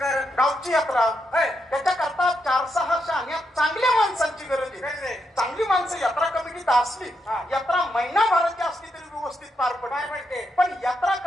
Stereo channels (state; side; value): normal; both; correlation 0.82